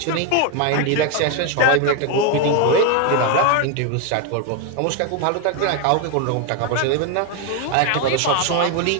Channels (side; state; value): both; different; correlation 0.01